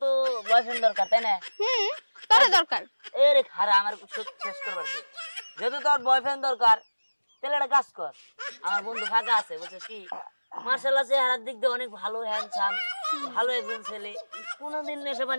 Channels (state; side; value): inverted; both; correlation -1.00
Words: তো বয়ফ্রেন্ড দরকার, তাই না? তোরে দরকার। এ রে খারা আমার শেষ করবার দে। যেহেতু তোর বয়ফ্রেন্ড দরকার তাহলে একটা কাজ কর, আমার বন্ধু ফাঁকা আছে বুঝছিস কি, মার্শাল্লাহ চেহারার দিক দিয়ে অনেক ভালো, হ্যান্ডসাম, ভালো একজন ছেলে, কোনোদিন নেশা